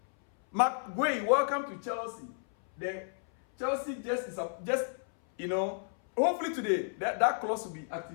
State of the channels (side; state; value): right; silent; 56 dB below the other